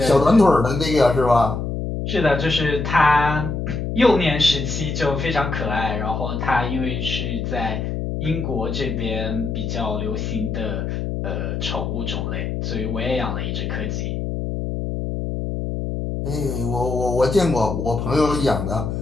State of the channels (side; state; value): left; noise; hum, 3 dB below the sound